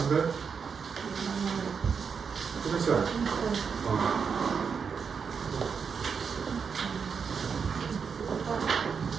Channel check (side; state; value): left; quieter; 6.1 dB